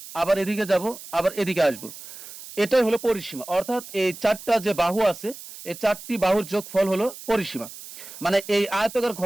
আবার এদিকে যাব, আবার এদিকে আসব, এটাই হলো পরিসীমা। অর্থাৎ এই 4টা যে বাহু আছে, এই 4টি বাহুর যোগফল হলো পরিসীমা। মানে এই আয়তাকার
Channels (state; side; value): noise; right; hiss, 15 dB below the sound